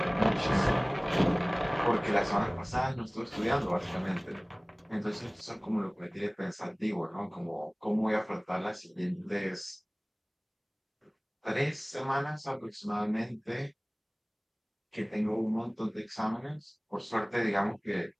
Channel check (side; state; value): both; identical; correlation 1.00